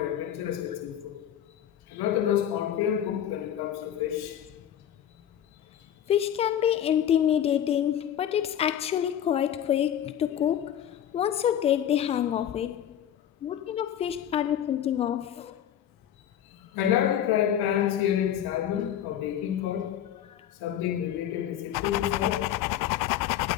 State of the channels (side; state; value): right; quieter; 10.4 dB